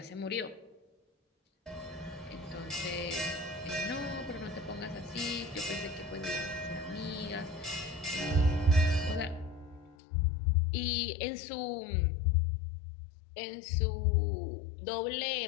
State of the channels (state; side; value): drops out; right; at 10.0 s